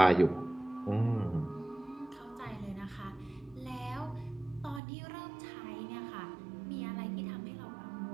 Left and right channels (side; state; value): left; drops out; at 4.8 s